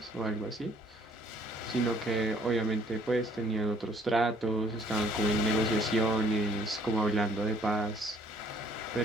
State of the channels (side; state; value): both; normal; correlation 0.61